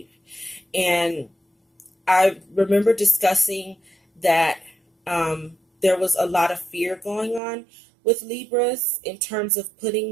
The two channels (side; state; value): left; drops out; at 7.4 s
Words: And I remember discussing that there was a lot of fear going on with Libras in terms of